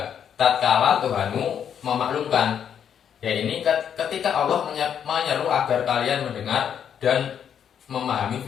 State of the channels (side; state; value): right; quieter; 8.5 dB